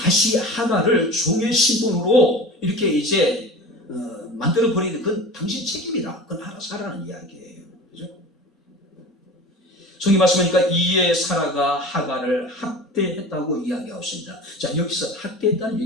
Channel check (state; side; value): normal; both; correlation 0.35